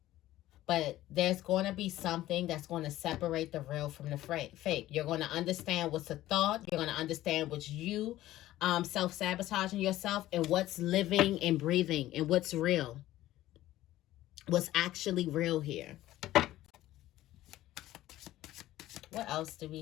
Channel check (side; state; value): right; quieter; 15.0 dB